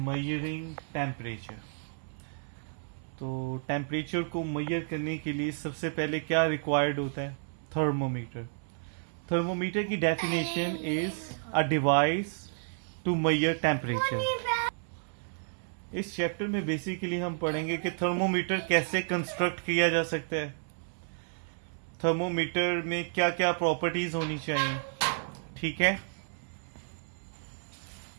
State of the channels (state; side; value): silent; left; digital silence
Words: टेम्परेचर। तो टेम्परेचर को मेजर करने के लिए सबसे पहले क्या रिक्वायर्ड होता है? थर्मोमीटर। थर्मोमीटर की definition is a device to measure temperature. इस चैप्टर में बेसिकली हम पढ़ेंगे कि थर्मोमीटर कैसे कंस्ट्रक्ट किया जा सकता है, थर्मोमीटर में क्या क्या प्रॉपर्टीज होनी चाहिए। ठीक है,